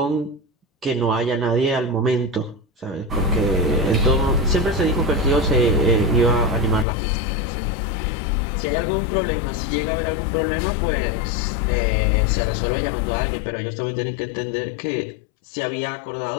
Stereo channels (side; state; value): right; drops out; at 6.9 s